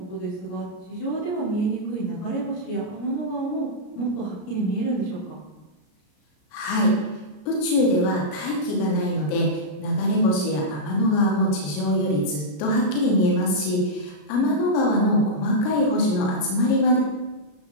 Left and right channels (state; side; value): late; right; 33 ms